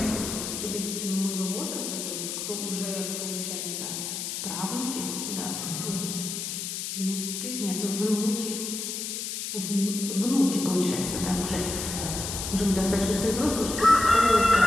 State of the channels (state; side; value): noise; left; hiss, 4 dB below the sound